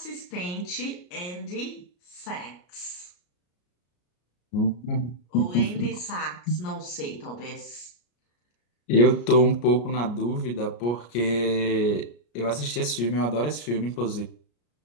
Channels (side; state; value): right; late; 34 ms